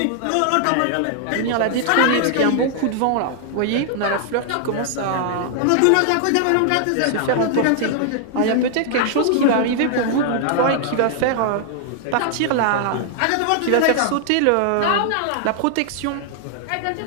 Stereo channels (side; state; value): both; different; correlation 0.00